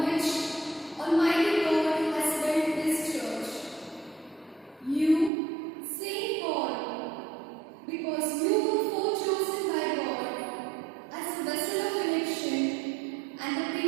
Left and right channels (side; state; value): left; drops out; at 5.3 s